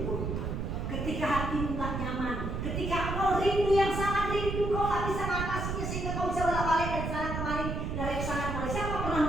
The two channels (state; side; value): noise; right; rumble, 3 dB below the sound